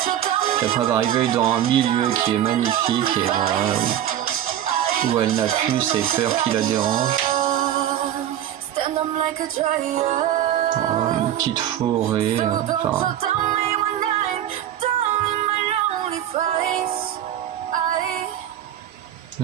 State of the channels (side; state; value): left; quieter; 11.2 dB